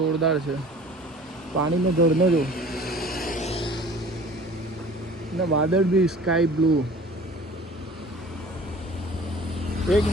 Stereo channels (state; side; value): normal; both; correlation 0.46